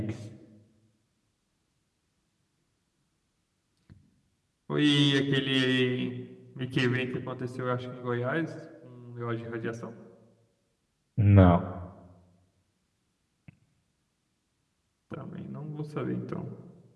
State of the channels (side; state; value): both; identical; correlation 1.00